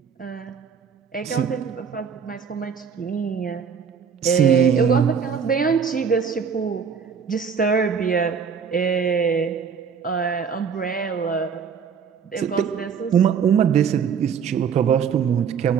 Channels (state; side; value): quieter; left; 6.7 dB